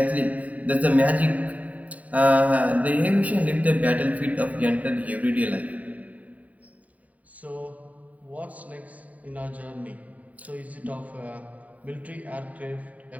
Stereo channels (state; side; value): late; left; 0.071 ms